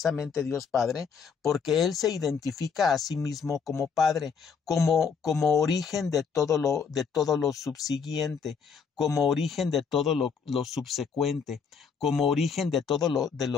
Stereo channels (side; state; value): right; quieter; 6.0 dB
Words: Dios Padre porque Él se identifica a sí mismo como Padre, como origen de todo lo subsiguiente, como origen de todo lo subsecuente, como origen de todo de